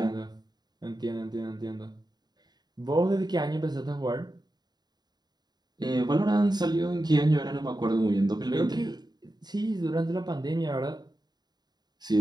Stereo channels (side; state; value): left; late; 0.20 ms